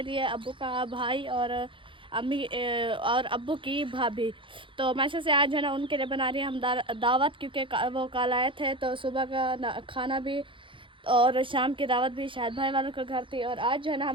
लिए, अब्बू का भाई और अम्मी और अब्बू की भाभी। तो माशाल्लाह से आज है ना उनके लिए बना रही हैं हम दावत, क्योंकि वो कल आए थे तो सुबह का खाना भी और शाम की दावत भी शायद भाई वालों के घर थी। और आज जो है ना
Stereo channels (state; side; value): late; left; 0.25 ms